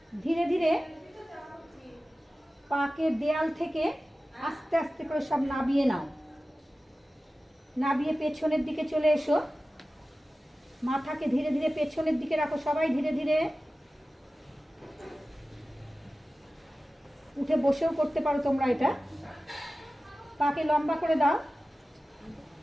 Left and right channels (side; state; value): both; normal; correlation 0.95